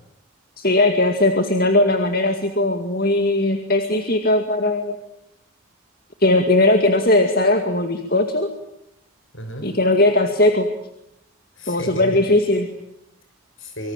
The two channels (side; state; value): both; normal; correlation -0.03